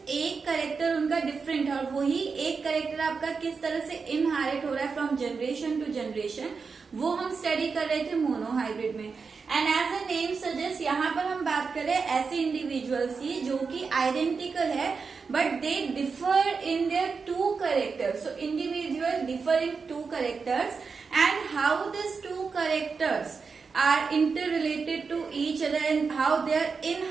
एक करेक्टर उनका डिफरेंट है और वही एक करेक्टर आपका किस तरह से इनहेरिट हो रहा है फ्रॉम जनरेशन टू जनरेशन, वो हम स्टडी कर रहे थे मोनोहाइब्रिड में। And as a name suggest यहाँ पर हम बात कर रहे हैं ऐसे इंडिविजुअल्स की जो कि आइडेंटिकल है but they differ in their two characters. So individuals differ in two characters, and how these two characters are interrelated to each other and how they are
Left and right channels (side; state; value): left; quieter; 5.1 dB